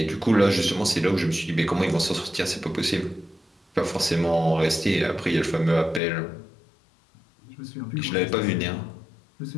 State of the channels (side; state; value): right; drops out; at 6.0 s